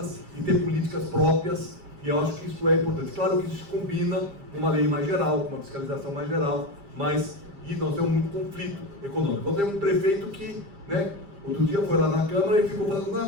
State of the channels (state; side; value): late; left; 7.3 ms